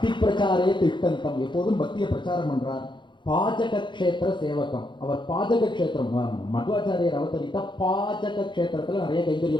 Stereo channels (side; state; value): right; late; 0.23 ms